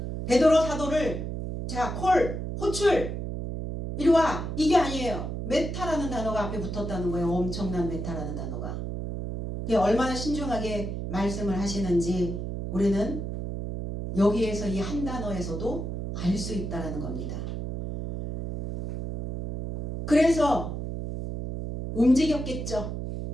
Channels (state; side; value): noise; right; hum, 5 dB below the sound